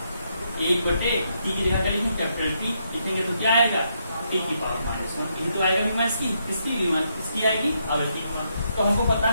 1/t की जगह करेंगे कैपिटल T लिखेंगे तो क्या आएगा, t की पावर -1। ये तो आएगा बीमा इसकी, किसकी बीमा, इसकी आएगी आवृत्ति की बीमा। तो हमको पता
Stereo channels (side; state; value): both; inverted; correlation -0.78